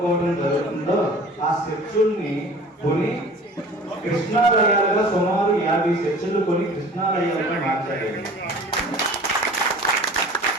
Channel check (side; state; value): both; normal; correlation 0.44